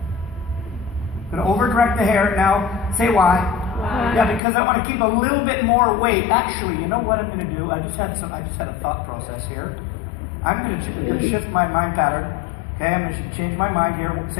I'm going to over-direct the hair. Now, say why? Yeah, because I want to keep a little bit more weight. Actually, you know what I'm going to do? I just had a thought process here. I'm going to shift my mind pattern. Okay, I'm going to change my mind here.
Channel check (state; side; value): drops out; right; at 4.4 s